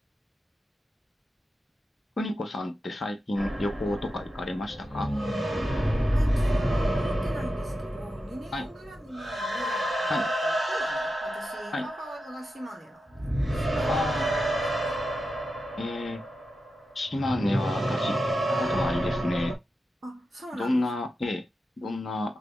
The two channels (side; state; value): both; normal; correlation 0.90